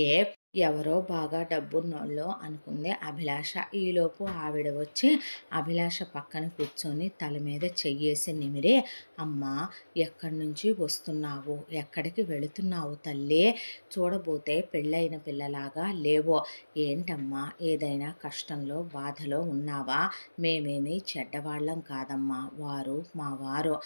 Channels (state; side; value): inverted; both; correlation -1.00